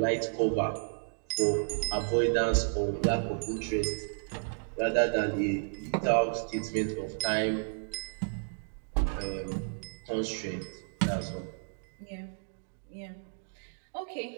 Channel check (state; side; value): silent; left; digital silence